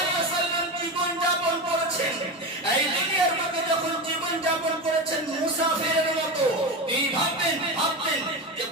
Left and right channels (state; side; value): normal; both; correlation 0.21